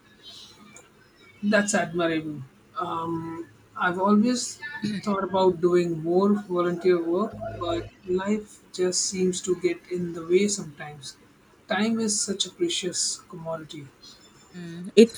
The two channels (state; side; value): identical; both; correlation 1.00